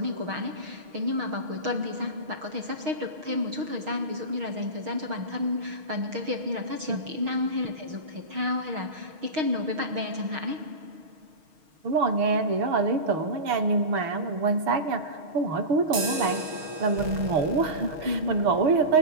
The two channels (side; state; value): left; late; 6.4 ms